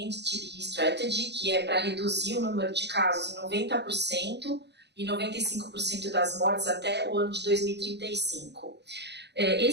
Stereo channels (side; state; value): left; late; 0.50 ms